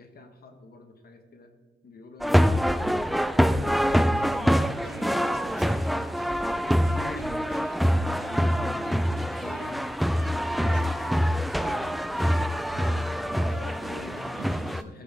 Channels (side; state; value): both; normal; correlation 0.96